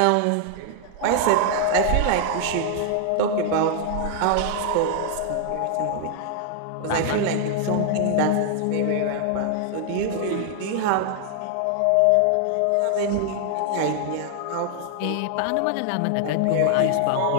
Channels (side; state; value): both; different; correlation 0.00